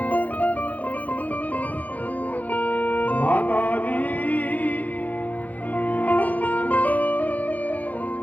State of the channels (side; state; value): right; late; 0.079 ms